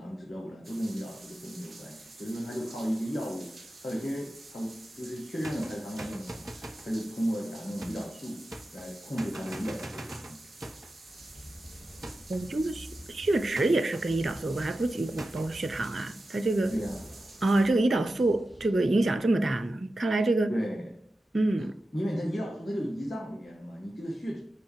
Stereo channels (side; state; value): both; normal; correlation 0.93